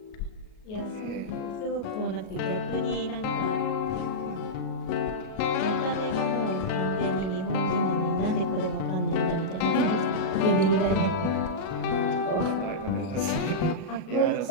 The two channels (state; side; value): late; right; 37 ms